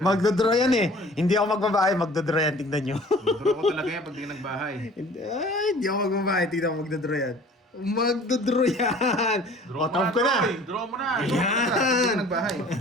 Magdodraw yan eh. Hindi ako magbabahay, magdodraw yan. Tingnan nyo. Draw ko talaga yan pag di ka nagbahay. Hindi ako magbabahay. Tingnan mo, magdodraw yan. Magdodraw yan! Draw O, mo tawag ko na. eh. Draw mo na. Pag di ka nagbahay.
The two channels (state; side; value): normal; both; correlation 0.48